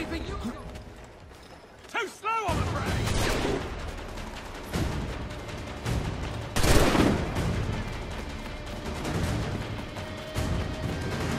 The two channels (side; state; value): both; identical; correlation 1.00